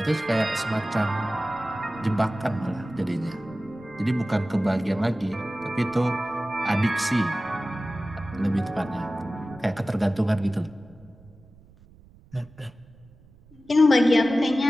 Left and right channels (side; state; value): right; noise; rumble, 26 dB below the sound